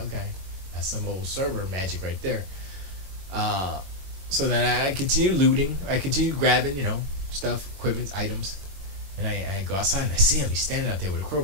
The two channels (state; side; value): late; left; 21 ms